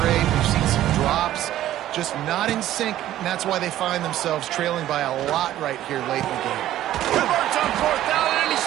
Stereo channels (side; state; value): left; quieter; 13.2 dB